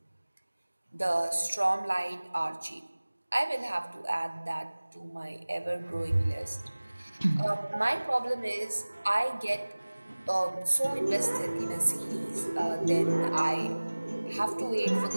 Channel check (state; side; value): inverted; both; correlation -1.00